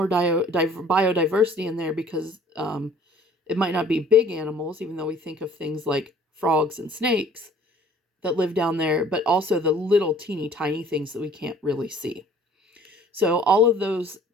biodiversity in there because it might not be big animals, even though we think of things like frogs and snakes that live down there, but also the little teeny tiny things that we can't really see. So all of those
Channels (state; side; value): normal; both; correlation 0.53